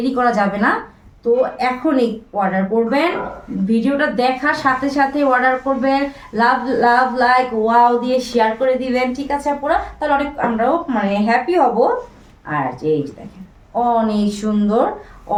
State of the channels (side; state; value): both; identical; correlation 1.00